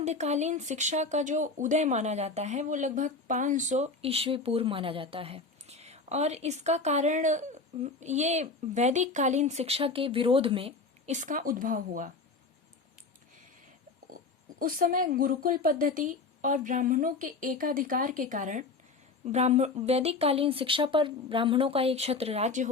शिक्षा का जो उदय माना जाता है वो लगभग 500 ईस्वी पूर्व माना जाता है और इसका कारण ये वैदिक कालीन शिक्षा के विरोध में इसका उद्भव हुआ। उस समय गुरुकुल पद्धति और ब्राह्मणों के एकाधिकार के कारण वैदिक कालीन शिक्षा पर ब्राह्मणों का एक छत्र राज्य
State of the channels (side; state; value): right; quieter; 3.9 dB